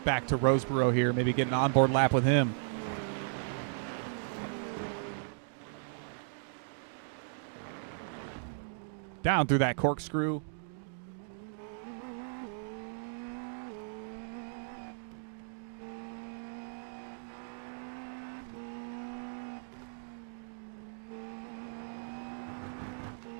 back to Roseboro here, maybe get an onboard lap with him. Down through that corkscrew.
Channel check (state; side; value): silent; left; digital silence